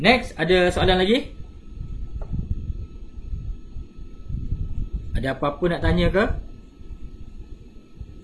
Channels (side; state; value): both; identical; correlation 1.00